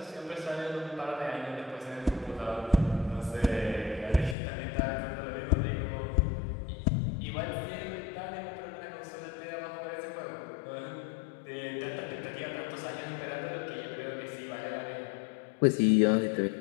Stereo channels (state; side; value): drops out; right; at 4.4 s